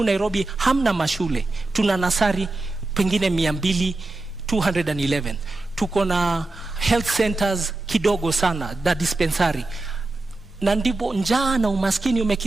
Nairobi hamna mashule. Tuna nasari pengine 211. Tuko na health centers kidogo sana, da dispensary. Na ndipo njaa na umaskini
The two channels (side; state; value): left; quieter; 3.0 dB